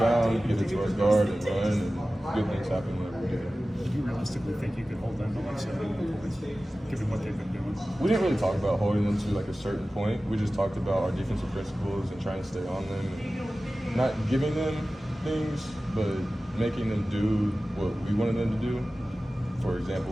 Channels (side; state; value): both; normal; correlation 0.96